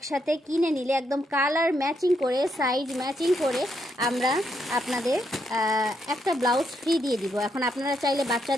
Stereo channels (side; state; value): both; normal; correlation 0.78